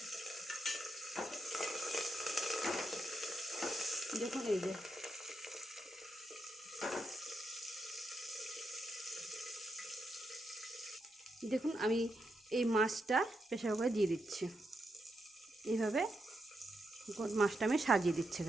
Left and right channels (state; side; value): normal; both; correlation 0.83